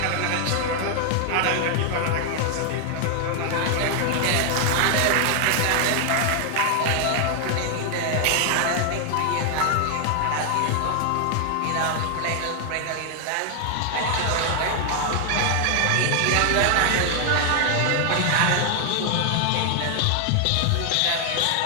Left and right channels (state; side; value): different; both; correlation 0.00